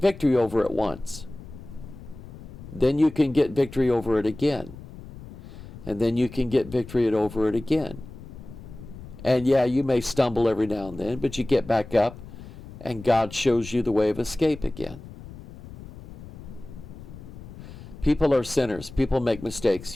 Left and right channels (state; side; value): noise; left; rumble, 15 dB below the sound